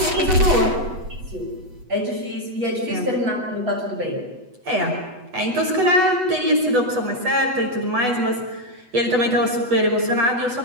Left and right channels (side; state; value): left; late; 8.0 ms